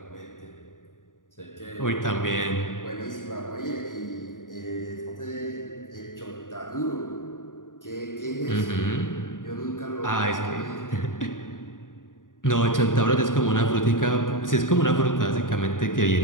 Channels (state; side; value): late; right; 0.89 ms